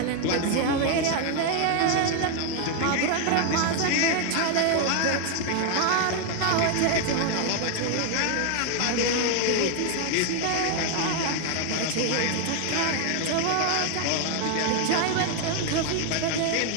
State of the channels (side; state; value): both; different; correlation 0.01